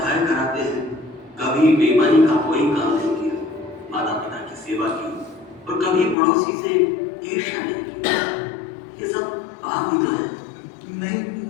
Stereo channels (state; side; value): drops out; right; at 6.2 s